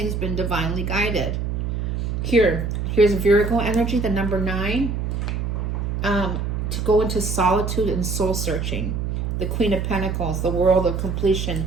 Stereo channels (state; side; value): noise; right; hum, 2 dB below the sound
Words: been divinely guided. Here's Virgo energy, the number 9, to go into solitude and soul searching. The Queen of Pentacles, the world of